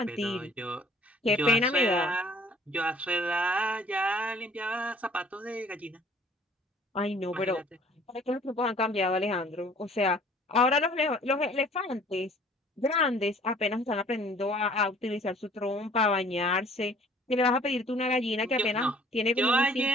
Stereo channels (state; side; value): normal; both; correlation 0.54